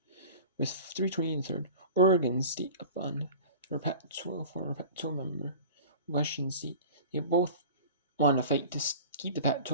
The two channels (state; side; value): inverted; both; correlation -0.38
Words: With 3:20 in the third. Oregon State up on their Pac-12, former Pac-12 member. Washington State. They both want to fight to keep the